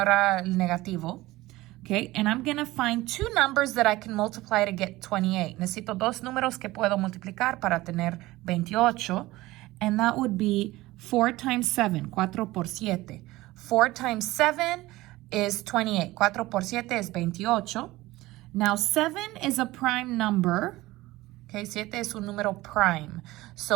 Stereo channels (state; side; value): quieter; left; 18.5 dB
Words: el negativo. Okay, and I'm going to find two numbers that I can multiply to get 28. Necesito dos números que puedo multiplicar para tener 28. And that would be 4 times 7. 4 por 7. 4 times 7 is 28. 4 por 7 is 28. Now 7 is a prime number. Okay, 7 es un número prime.